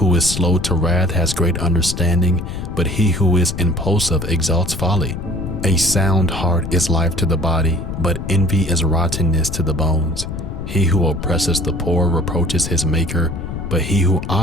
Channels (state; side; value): noise; left; rumble, 7 dB below the sound